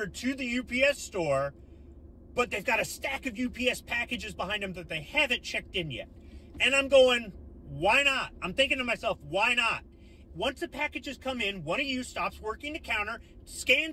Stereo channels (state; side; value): identical; both; correlation 1.00